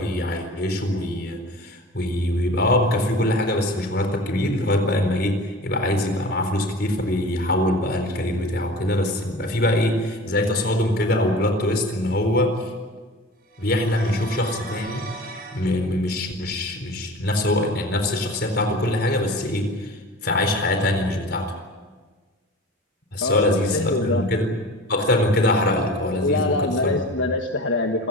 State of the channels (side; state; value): both; normal; correlation 0.39